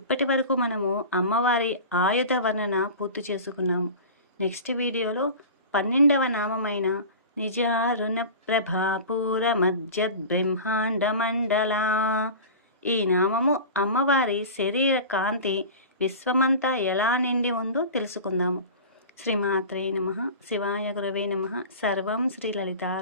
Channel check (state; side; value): inverted; both; correlation -0.34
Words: వరకు మనము అమ్మవారి ఆయుధ వర్ణన పూర్తి చేసుకున్నాము. నెక్స్ట్ వీడియోలో 12వ నామమైన నిజారుణ ప్రభాపూర మధ్యద్ బ్రహ్మాండ మండల, ఈ నామము అమ్మవారి శరీర కాంతి విశ్వమంతా ఎలా నిండి ఉందో తెలుసుకుందాము. శ్రీమాత్రే నమః. శివాయ గురవే నమః. సర్వం శ్రీ